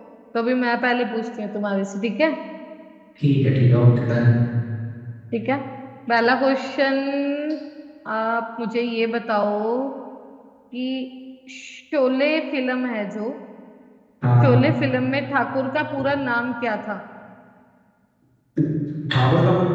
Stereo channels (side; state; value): both; identical; correlation 1.00